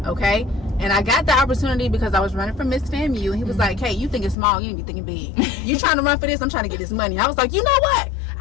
Okay. And I got the opportunity because I was running for Miss FAMU, and he was like, hey, you think it's small, you need to be thinking big. You trying to run for this, I'm trying to get this money. I was like, you know what,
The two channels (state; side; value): drops out; right; at 4.4 s